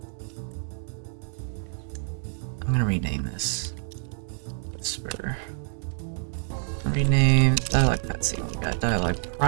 I'm gonna rename this. Whisper. Rename dialogue cutscene. We got dialogue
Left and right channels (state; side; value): silent; left; 60 dB below the other